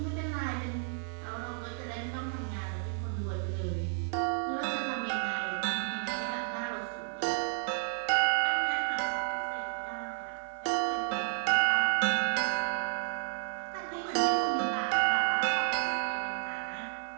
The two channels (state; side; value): silent; left; 57 dB below the other